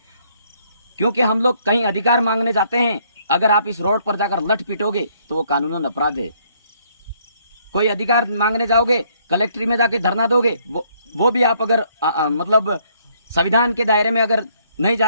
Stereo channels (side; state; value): both; inverted; correlation -0.67